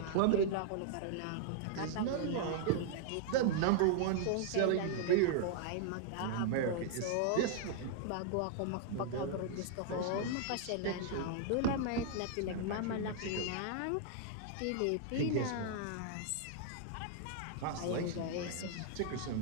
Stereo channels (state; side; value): different; both; correlation -0.01